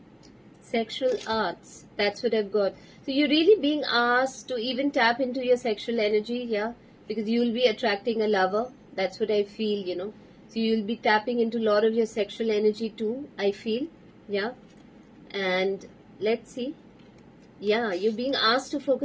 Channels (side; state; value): both; identical; correlation 1.00